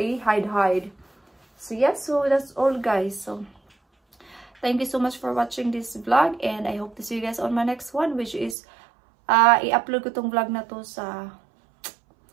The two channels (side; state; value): left; drops out; at 8.6 s